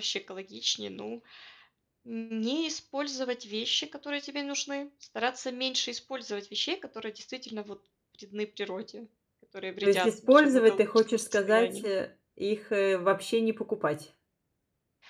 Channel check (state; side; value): identical; both; correlation 1.00